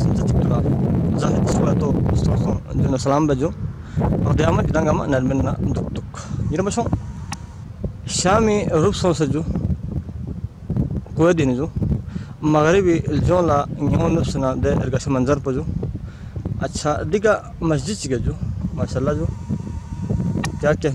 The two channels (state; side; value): identical; both; correlation 1.00